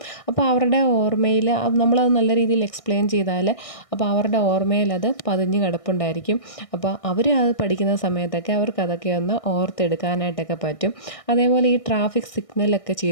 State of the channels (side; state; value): right; late; 1.6 ms